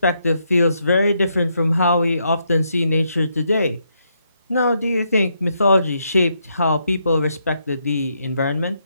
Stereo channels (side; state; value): both; inverted; correlation -0.78